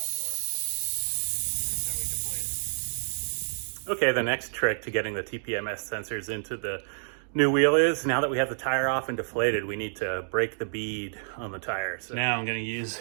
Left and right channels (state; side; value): silent; left; digital silence